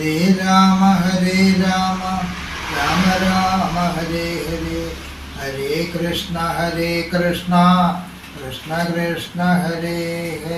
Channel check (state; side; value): identical; both; correlation 1.00